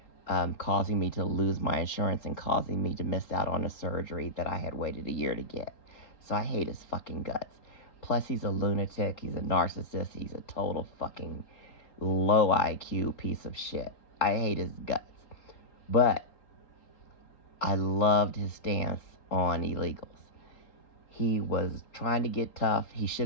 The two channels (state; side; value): late; right; 3.8 ms